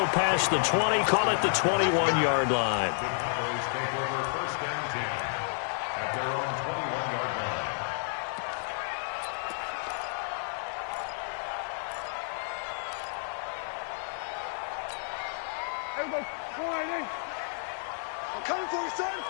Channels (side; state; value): right; silent; 57 dB below the other